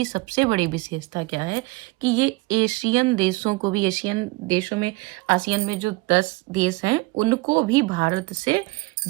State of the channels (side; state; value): left; quieter; 23.7 dB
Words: सबसे बड़ी विशेषता क्या है कि ये एशियन देशों को भी, एशियन देशों में, आसियान में जो 10 देश हैं उनको भी भारत से